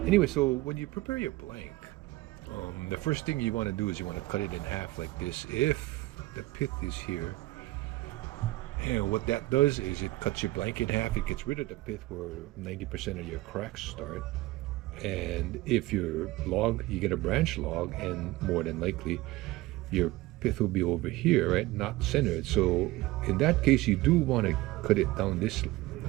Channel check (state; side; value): quieter; left; 18.8 dB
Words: Anyway, so when you prepare your blank, the first thing you want to do is you want to cut it in half like this. If the pith is here, and what that does is it cuts your blank in half. It gets rid of the pith where 90% of your cracks start. And if you're log, you get a branch log, and more than likely, your pith will be over here, right? Not centered. So in that case, you do want to cut it down this